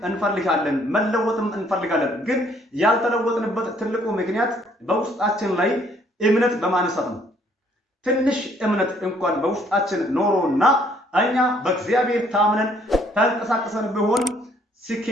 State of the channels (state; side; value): normal; both; correlation 0.64